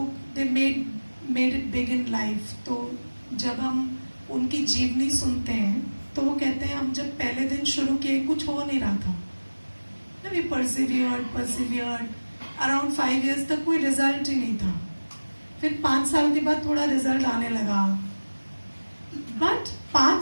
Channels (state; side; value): inverted; both; correlation -1.00